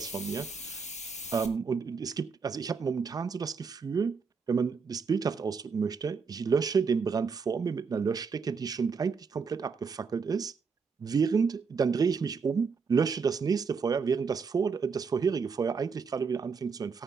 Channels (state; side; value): quieter; left; 5.4 dB